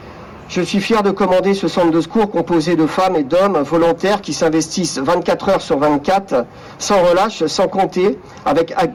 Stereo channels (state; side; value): identical; both; correlation 1.00